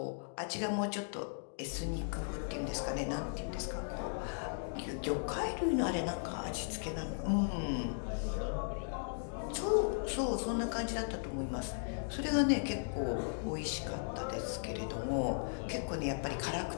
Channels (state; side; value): silent; right; digital silence